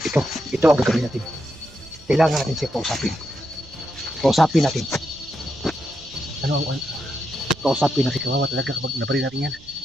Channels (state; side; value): noise; right; rumble, 23 dB below the sound